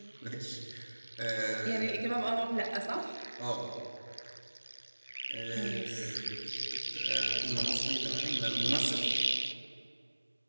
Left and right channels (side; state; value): both; inverted; correlation -1.00